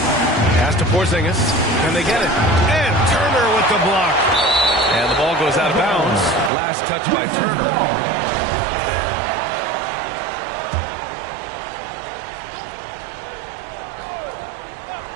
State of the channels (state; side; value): drops out; left; at 6.5 s